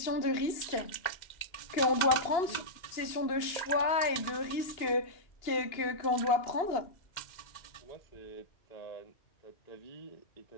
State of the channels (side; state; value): right; late; 2.8 ms